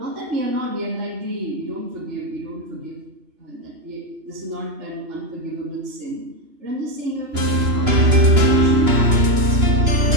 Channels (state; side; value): late; left; 2.9 ms